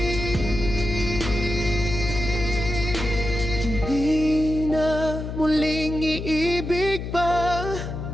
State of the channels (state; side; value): noise; left; hum, 6 dB below the sound